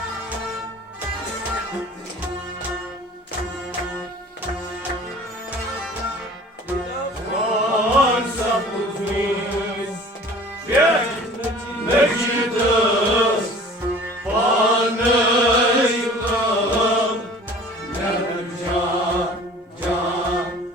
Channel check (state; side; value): normal; both; correlation 0.46